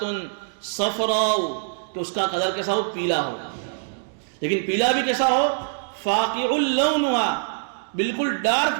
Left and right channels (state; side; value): silent; left; digital silence